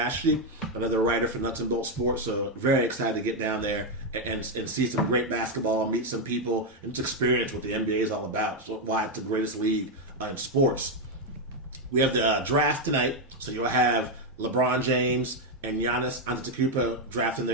another writer for Nuts and Bolts Sports. So very excited to get down there and see some great basketball, meet some people, and just experience what the NBA is all about. So why it's the greatest league in sports. We have the draft tonight, so you'll have LeBron James and Giannis Antetokounmpo drafting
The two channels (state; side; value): normal; both; correlation 0.03